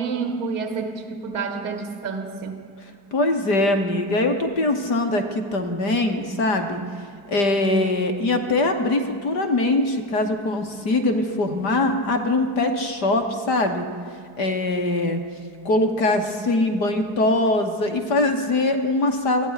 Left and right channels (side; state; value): right; late; 5.0 ms